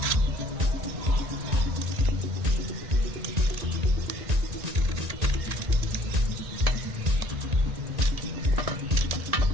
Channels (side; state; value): left; late; 1.8 ms